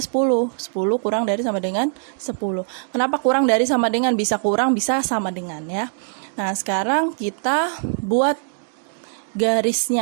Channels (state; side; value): silent; left; digital silence